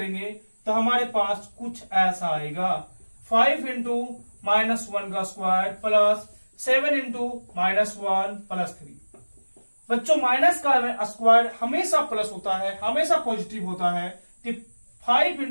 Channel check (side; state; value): both; inverted; correlation -1.00